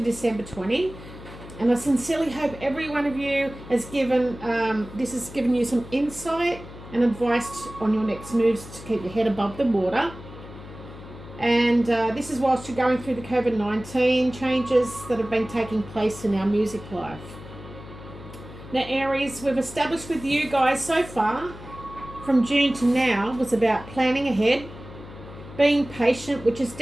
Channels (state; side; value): noise; left; hum, 15 dB below the sound